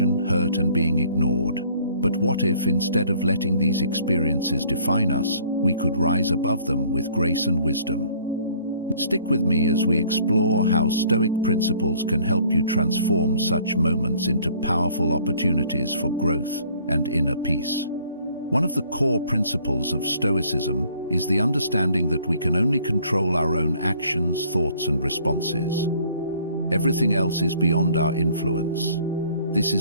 hurt, and being ignored. But what if, instead of letting these experiences define us, we could rise above them with grace and wisdom? Stick with me as we explore how Stoic principles can help you transform such moments into powerful opportunities for growth and inner peace. One of the core principles of Stoicism is the understanding that we can only control our own actions, thoughts, and responses. Everything else is beyond our influence. This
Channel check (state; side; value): inverted; both; correlation -0.58